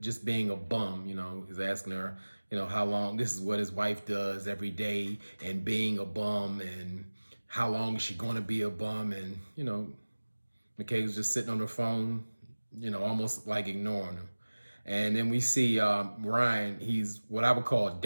being a bum. He's asking her, how long, this is what his wife does every day, and being a bum, and how long is she going to be a bum? And, Michaela's just sitting on her phone, almost like ignoring him. And then we see Ryan, he's what I would call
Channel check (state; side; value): inverted; both; correlation -1.00